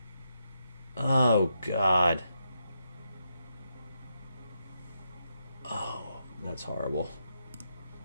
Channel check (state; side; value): inverted; both; correlation -0.82